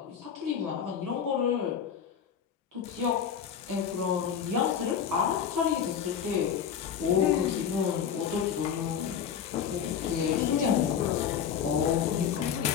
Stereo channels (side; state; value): right; quieter; 8.0 dB